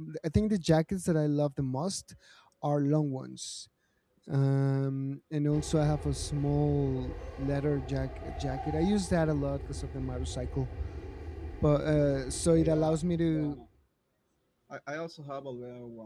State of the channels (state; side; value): identical; both; correlation 1.00